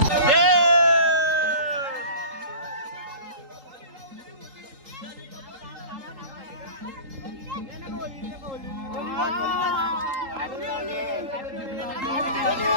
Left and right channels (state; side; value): late; left; 3.8 ms